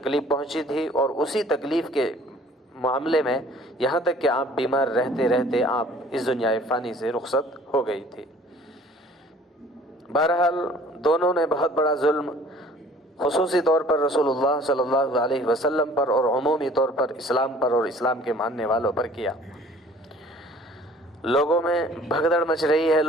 پہنچی تھی، اور اسی تکلیف کے معاملے میں یہاں تک کہ آپ بیمار رہتے رہتے آپ اس دنیا فانی سے رخصت ہو گئی تھی۔ بہرحال دونوں نے بہت بڑا ظلم خصوصی طور پر رسول اللہ صلی اللہ علیہ وسلم پر اور عمومی طور پر اسلام پر اور اسلام کے ماننے والوں پر کیا۔ لوگوں میں بھگدڑ مچ رہی ہے،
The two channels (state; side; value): normal; both; correlation 0.52